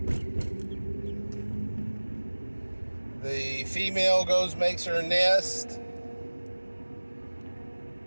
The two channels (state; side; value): inverted; both; correlation -1.00